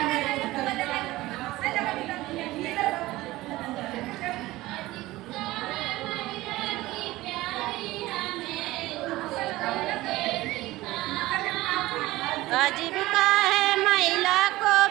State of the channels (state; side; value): quieter; left; 18.1 dB